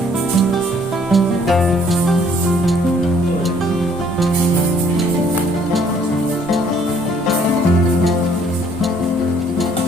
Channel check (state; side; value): normal; both; correlation 0.62